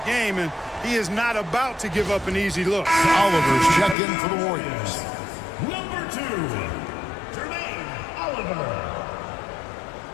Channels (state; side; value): drops out; right; at 4.0 s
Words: game, and he is not about to give up an easy look. Oliver's checked in for the Warriors. Number 2, Jermaine Oliver.